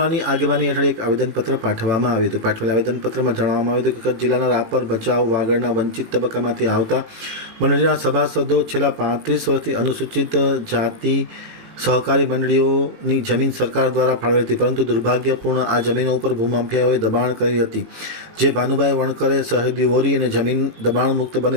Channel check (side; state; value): left; late; 18 ms